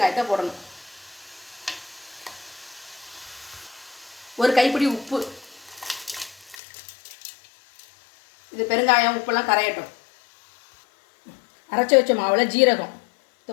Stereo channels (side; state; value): right; drops out; at 6.6 s